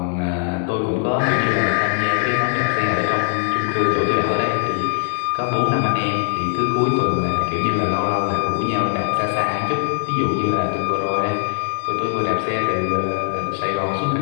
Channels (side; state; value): right; silent; digital silence